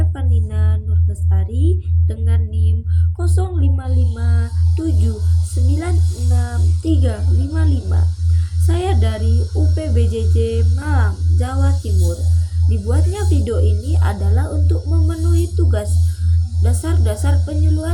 Nurlestari dengan NIM 0557966355. Saya dari UPBJJ Malang, Jawa Timur. Dibuatnya video ini adalah untuk memenuhi tugas dasar-dasar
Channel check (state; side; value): identical; both; correlation 1.00